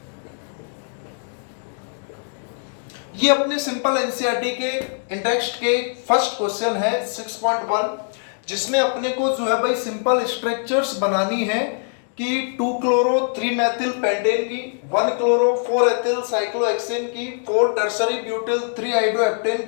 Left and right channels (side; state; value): right; silent; 64 dB below the other